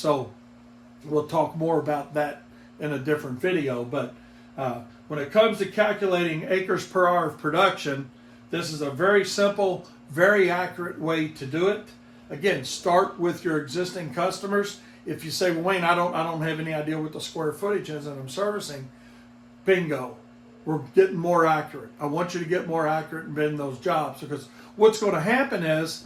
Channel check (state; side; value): identical; both; correlation 1.00